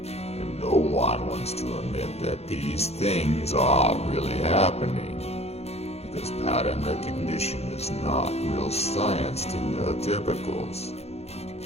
And no one wants to admit that these things are really happening, because pattern recognition is not real science to neurotypicals.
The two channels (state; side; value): late; right; 0.30 ms